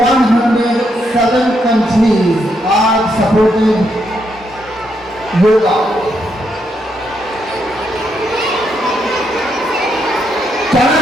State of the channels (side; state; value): both; normal; correlation 0.78